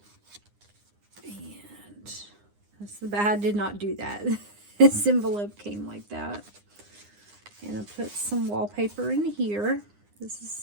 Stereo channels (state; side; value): late; left; 9.8 ms